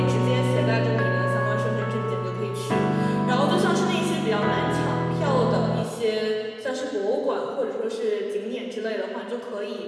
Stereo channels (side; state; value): both; identical; correlation 1.00